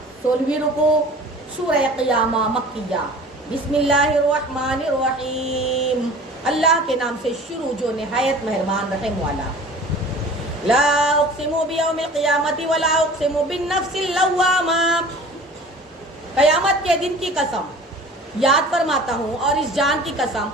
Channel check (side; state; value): both; normal; correlation 0.44